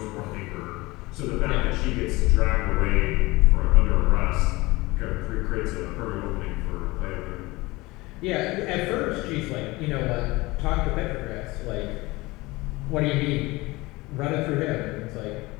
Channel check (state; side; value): quieter; right; 21.7 dB